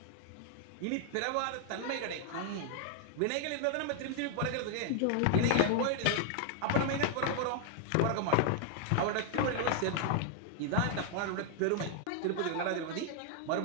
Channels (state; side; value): different; both; correlation 0.00